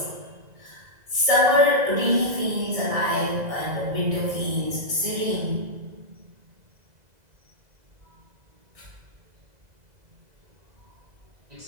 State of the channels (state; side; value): late; left; 2.0 ms